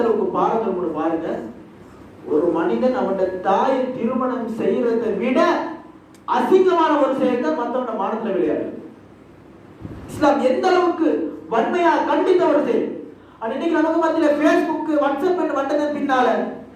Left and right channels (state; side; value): identical; both; correlation 1.00